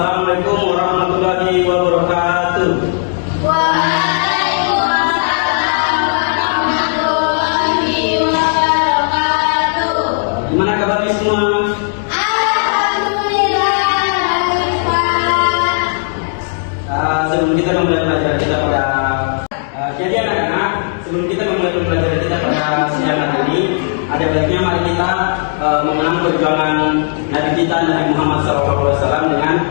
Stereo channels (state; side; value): silent; right; digital silence